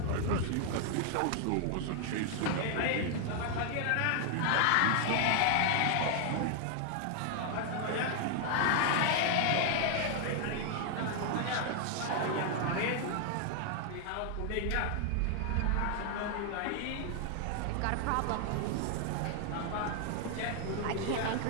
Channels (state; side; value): different; both; correlation 0.00